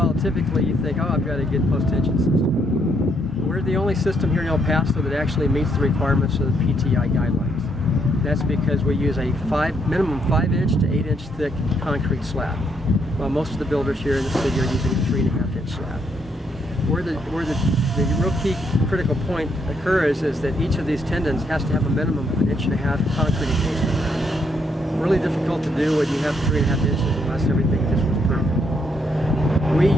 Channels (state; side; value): normal; both; correlation 0.73